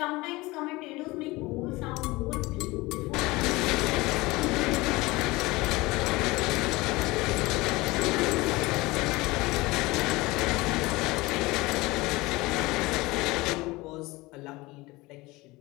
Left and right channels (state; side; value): quieter; right; 21.6 dB